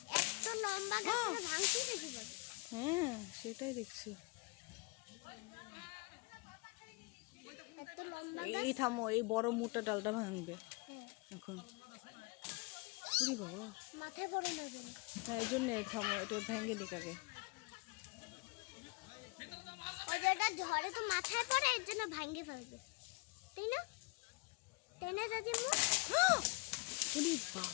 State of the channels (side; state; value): right; quieter; 28.3 dB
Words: হ্যাঁ সেটাই দেখছি। এই থামো, এই বড় মোটা ডালটা ভাঙবে এখন। ওরে বাবা, হ্যাঁ এই জন্য থামো, এটা ভেঙে নিক আগে। ঝড়ে তো মাথায় পড়ে, এর জন্য ভাঙে ফেলবে, তাই না? তাই না দাদিমা? ওরে